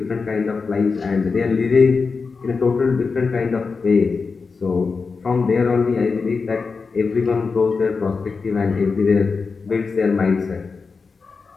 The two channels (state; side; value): quieter; right; 4.7 dB